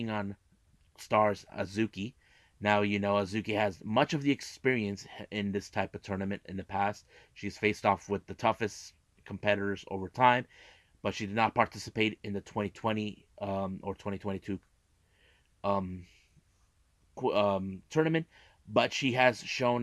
on Stars Azuki. Now, Azuki has much of the experience in this type of tournament in the past. She's faced off with the toughest competitors over time, but she did not participate in the 2020 or 2022 tournament. But she has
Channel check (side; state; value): both; identical; correlation 1.00